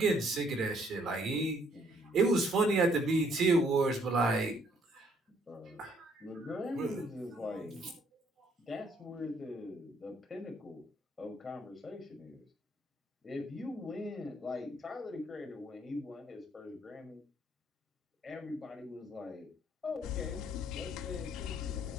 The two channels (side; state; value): both; normal; correlation 0.66